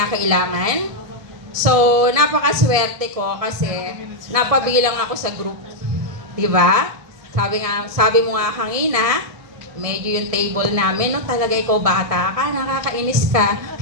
So, napakaswerte ko kasi napabilang ako sa group. Diba? Sabi mo nga kanina, medyo yung table namin, no, talaga ikaw bata ka, nakakainis ka.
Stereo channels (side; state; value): left; late; 1.7 ms